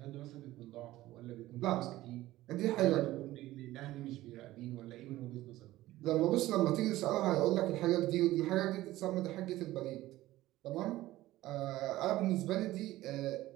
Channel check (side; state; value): left; quieter; 16.3 dB